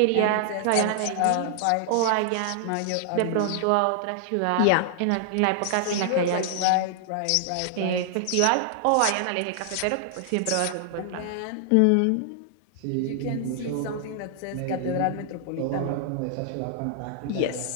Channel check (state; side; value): different; both; correlation -0.01